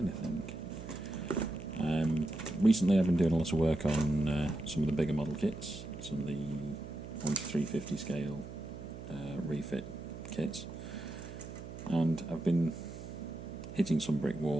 Recently I've been doing a lot of work on some of the bigger model kits, some of the 1:350 scale refit kits, and I've been hitting some brick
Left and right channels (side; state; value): right; noise; hum, 11 dB below the sound